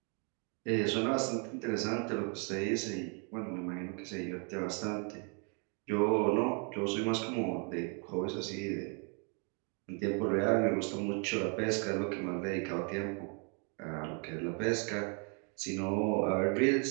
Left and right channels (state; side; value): quieter; left; 37.0 dB